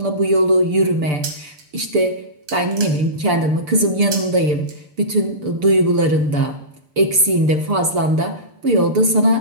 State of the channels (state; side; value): late; left; 6.8 ms